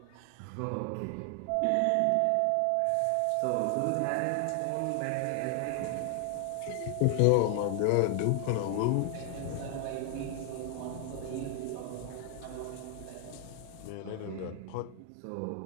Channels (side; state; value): both; different; correlation 0.00